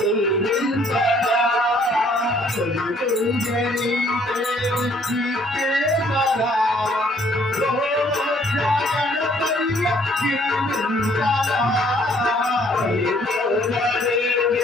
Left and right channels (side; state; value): both; normal; correlation 0.62